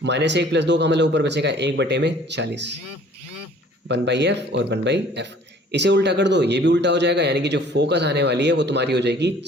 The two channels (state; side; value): normal; both; correlation 0.53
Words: -1 + 2 का मतलब ऊपर बचेगा 1/40। 1/f और 1/f। इसे उल्टा कर दो, ये भी उल्टा हो जाएगा, यानी कि जो फोकस आने वाली है वो तुम्हारी हो जाएगी